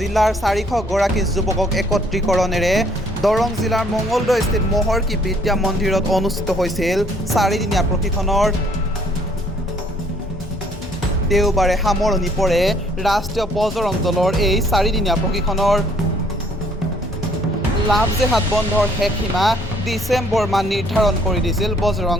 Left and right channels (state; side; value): normal; both; correlation 0.62